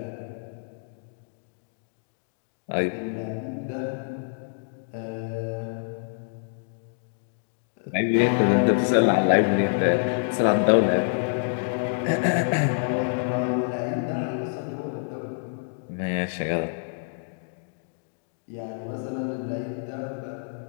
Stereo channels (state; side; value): silent; right; digital silence